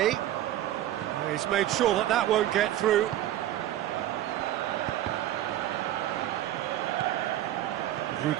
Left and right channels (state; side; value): quieter; left; 13.1 dB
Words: he's made sure that that won't get through.